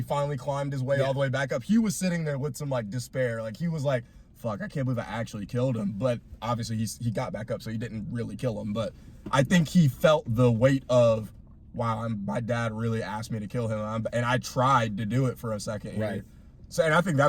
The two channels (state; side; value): identical; both; correlation 1.00